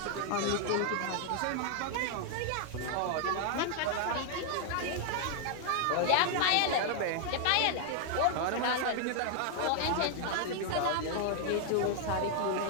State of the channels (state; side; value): different; both; correlation 0.00